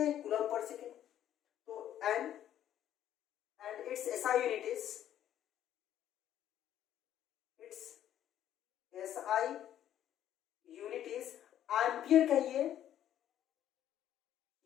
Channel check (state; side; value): quieter; right; 11.2 dB